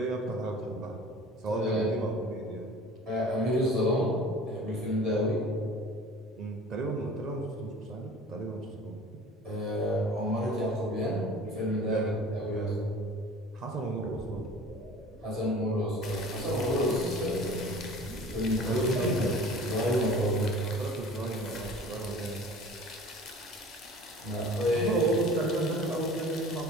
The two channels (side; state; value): both; normal; correlation 0.43